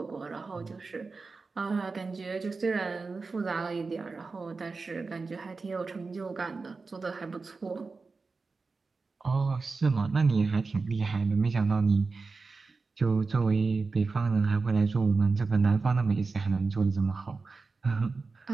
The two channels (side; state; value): left; quieter; 4.2 dB